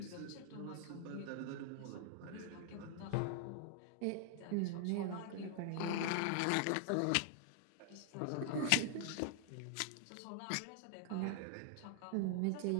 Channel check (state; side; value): different; both; correlation 0.00